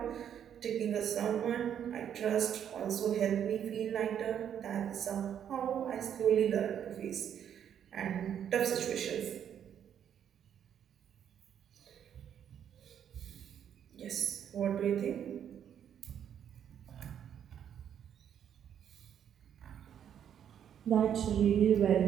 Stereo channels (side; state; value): left; quieter; 9.2 dB